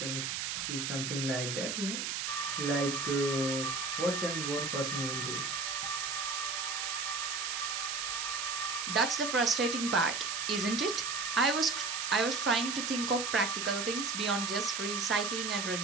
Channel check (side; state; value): right; noise; hiss, 2 dB below the sound